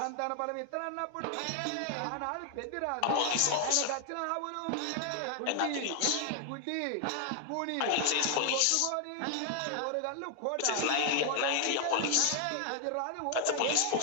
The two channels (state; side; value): different; both; correlation 0.00